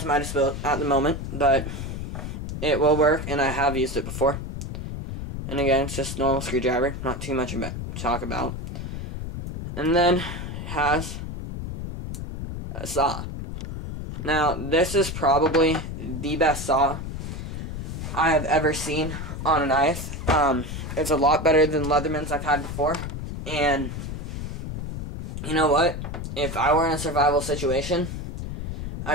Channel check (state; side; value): noise; left; rumble, 6 dB below the sound